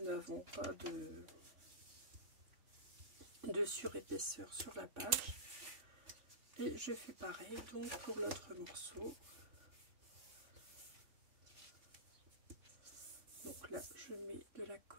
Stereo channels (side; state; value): left; late; 3.3 ms